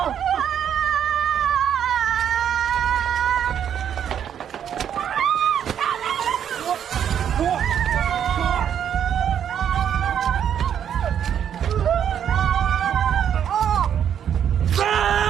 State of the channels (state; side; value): quieter; left; 9.0 dB